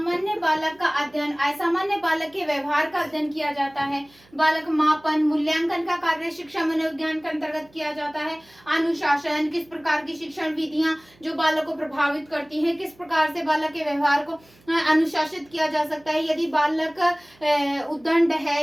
बालक का अध्ययन, असामान्य बालक के व्यवहार का अध्ययन किया जाता है। बालक मापन मूल्यांकन का कार्य शिक्षा मनोविज्ञान के अंतर्गत किया जाता है। अनुशासन, किस प्रकार की शिक्षण विधियां जो बालक को प्रभावित करती हैं, किस प्रकार से बालक के व्यवहार को अनुशासित किया जा सकता है। यदि बालक उद्दंड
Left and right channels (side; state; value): right; noise; hum, 29 dB below the sound